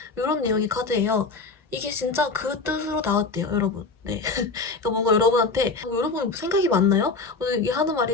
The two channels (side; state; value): right; quieter; 4.0 dB